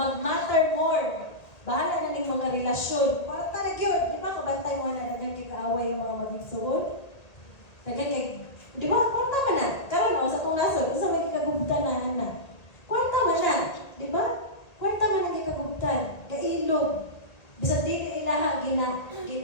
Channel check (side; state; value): right; late; 1.8 ms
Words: more. Bahala na ning mga relasyon. Kwarta na gyud, di ba kabantay mo na naging kikaaway yung mga magigsuod? Di ba kwarta man na. Karon sa tong nasod, usa man gikagubtan na. Kwarta man na, di ba? Kwarta man ang gikagubtan, gailog. Bisag dili ilaha